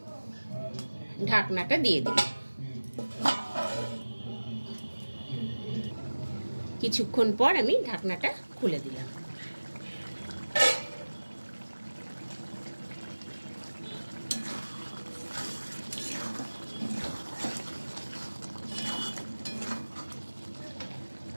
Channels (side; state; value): both; inverted; correlation -1.00